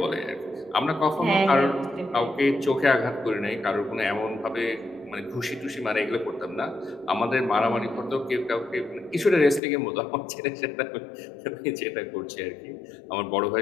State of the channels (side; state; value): right; drops out; at 9.6 s